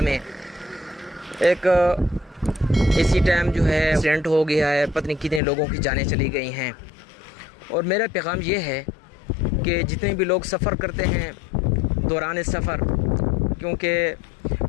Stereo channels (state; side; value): drops out; right; at 5.4 s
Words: میں ایک اسی ٹائم جو ہے ایکسیڈنٹ ہو گیا ہے، پتہ نہیں کتنے لوگوں کی جانیں چلی گئی ہیں۔ اور میرا پیغام یہ ہے کہ جتنے بھی لوگ سفر کرتے ہیں دوران سفر، کیونکہ